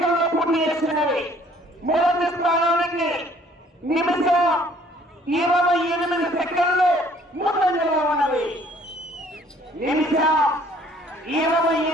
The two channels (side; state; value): both; normal; correlation 0.58